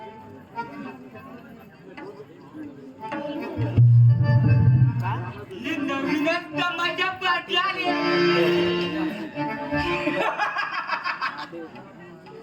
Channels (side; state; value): both; identical; correlation 1.00